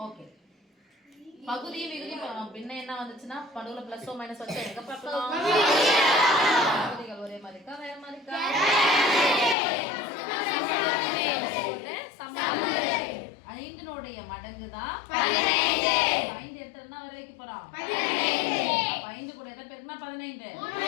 ஓகே. பகுதி விகுதி பின்ன என்ன வந்துச்சுன்னா நடுவுல பிளஸ் ஓ மைனஸ் வச்சா எங்க பார்க்கலாம்? பகுதிகள் ஒரே மாதிரி இருக்கா வேற மாதிரி இருக்கா? ஐந்தினுடைய மடங்கு தான் 15. 5 எடுத்தா என்ன வர வைக்க போறோம்? 15. 5 கூட எதை பெருக்கினா 15. 5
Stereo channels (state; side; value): drops out; right; at 9.6 s